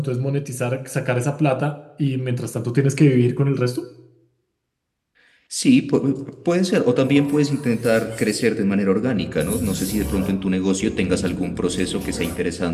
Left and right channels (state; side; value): identical; both; correlation 1.00